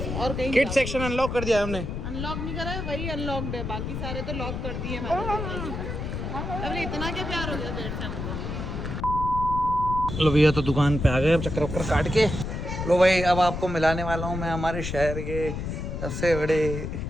और कहीं किड सेक्शन अनलॉक कर दिया है हमने। अनलॉक नहीं करा है, वही अनलॉक्ड है, बाकी सारे तो लॉक कर दिए मैंने। अरे इतना क्या प्यार हो गया पेट से हमको। लो भैया तो दुकान पे आ गए, अब चक्कर वक्कर काट के। लो भाई अब आपको मिलाने वाला हूँ मैं हमारे शहर के सबसे बड़े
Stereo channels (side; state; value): left; noise; rumble, 5 dB below the sound